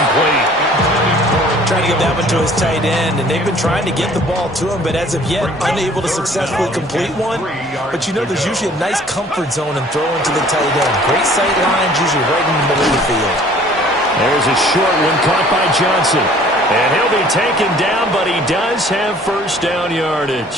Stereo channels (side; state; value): both; normal; correlation 0.53